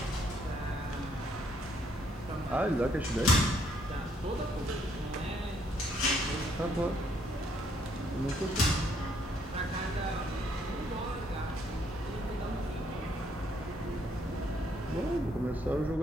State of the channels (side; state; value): both; normal; correlation 0.69